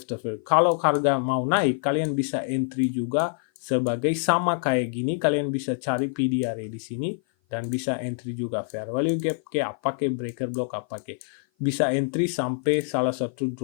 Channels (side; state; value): right; silent; 55 dB below the other